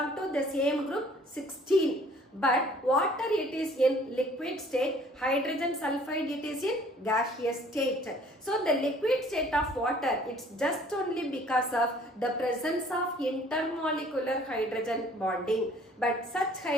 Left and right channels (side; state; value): both; normal; correlation 0.55